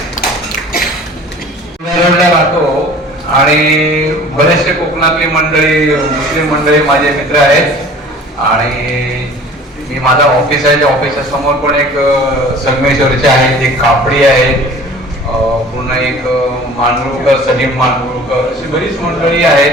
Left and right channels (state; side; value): normal; both; correlation 0.46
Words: राहतो आणि बरेचसे कोकणातली मंडळी, मुस्लिम मंडळी माझे मित्र आहेत आणि मी माझा ऑफिस आहे, त्या ऑफिसच्या समोर पण एक संगमेश्वरचे आहेत, एक कापडी आहेत, पुन्हा एक मांडुळकर, सलीम मांडुळकर, अशी बरीच मंडळी